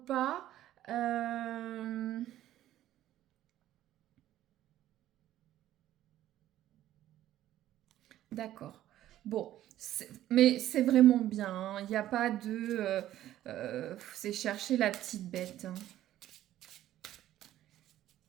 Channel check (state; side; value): quieter; left; 13.2 dB